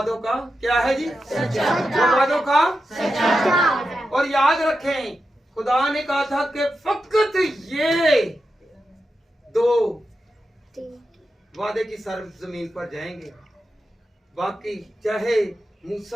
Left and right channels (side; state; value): both; normal; correlation 0.89